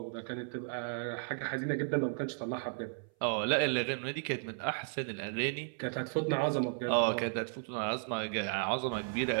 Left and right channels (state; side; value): silent; left; 55 dB below the other